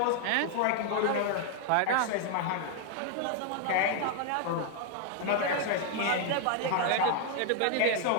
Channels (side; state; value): both; different; correlation 0.00